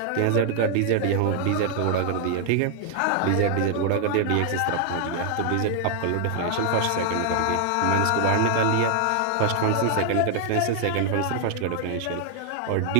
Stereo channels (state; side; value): different; both; correlation 0.00